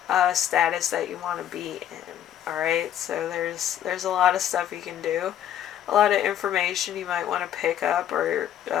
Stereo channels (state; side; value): quieter; right; 10.8 dB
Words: status that you want to be in. Alright, so there's a lot of stuff you can do. A lot of information you might want to pick up, or